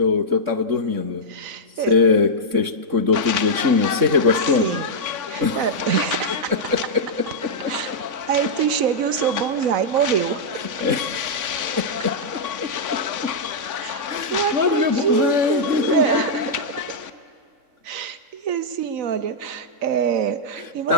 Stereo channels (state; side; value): late; left; 3.5 ms